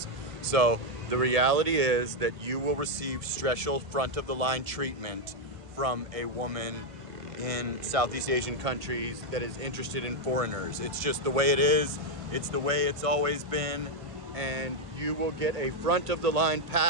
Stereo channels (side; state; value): left; late; 1.5 ms